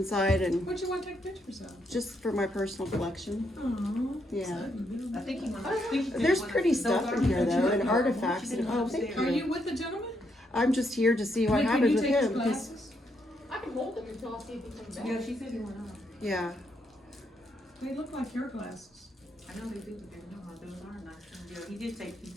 and What you want to take pictures of? just for my personal collection. Oh. Yeah. I think he went upstairs. There's pretty stuff in here though, and artifacts. And, oh, thank Are you. you with the gentleman? I'm just here to see what Can happens you with take his him. 'Cause- glasses? I can hold them until I see if he comes back. Yeah, she said he went up. yeah. They look like your glasses. I know they do, but they're not, those are not. Yeah, he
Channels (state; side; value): normal; both; correlation 0.77